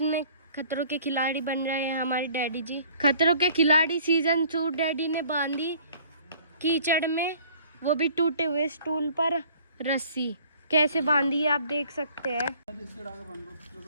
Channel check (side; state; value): both; inverted; correlation -0.53